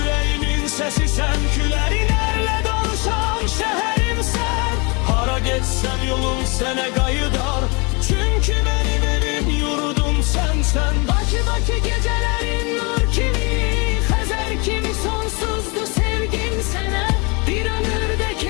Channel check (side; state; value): right; quieter; 30.2 dB